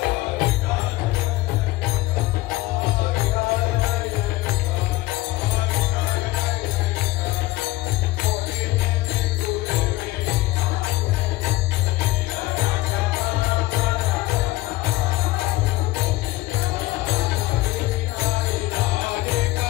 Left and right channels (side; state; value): right; quieter; 18.7 dB